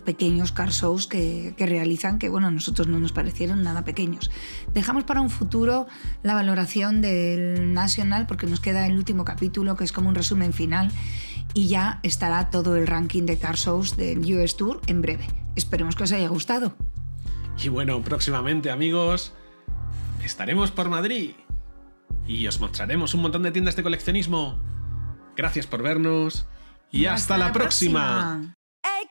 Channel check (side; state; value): both; inverted; correlation -1.00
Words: car shows que realizan, que bueno, a nosotros no nos parecieron nada pequeños. Dejamos para un futuro la valoración del National porque nos queda el último capítulo, que es como un resumen final, y ya estará todo el ranking de car shows del US Tour en breve. Esperemos que os haya gustado. Y bueno, próximamente, amigos, estaremos por Madrid y os mostraremos un montón de tiendas de coleccionismo. Gracias por vernos y hasta la próxima. Hey,